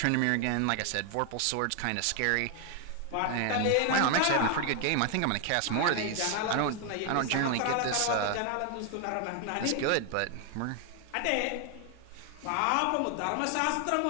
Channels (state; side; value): different; both; correlation 0.00